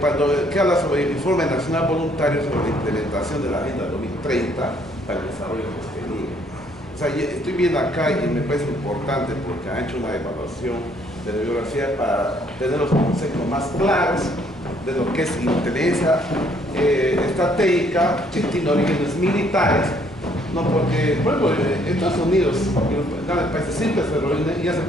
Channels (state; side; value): normal; both; correlation 0.65